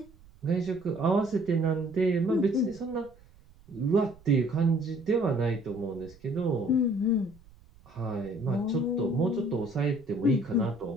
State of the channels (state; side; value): noise; right; rumble, 26 dB below the sound